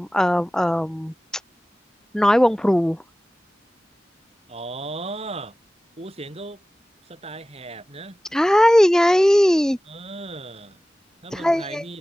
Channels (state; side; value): normal; both; correlation 0.97